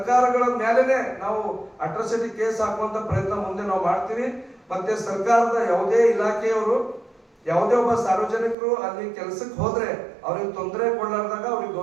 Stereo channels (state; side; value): drops out; left; at 8.6 s